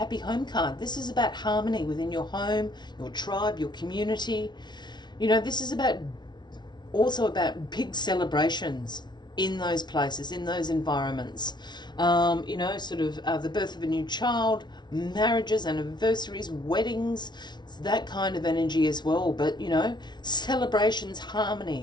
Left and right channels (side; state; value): right; late; 0.20 ms